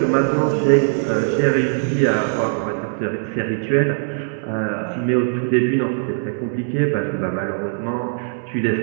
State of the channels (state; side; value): silent; left; digital silence